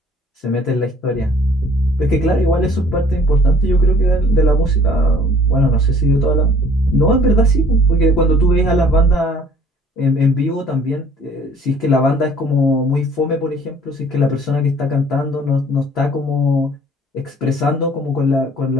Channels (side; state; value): both; normal; correlation 0.55